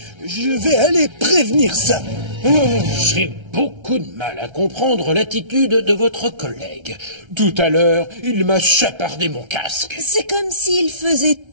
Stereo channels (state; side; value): late; left; 1.3 ms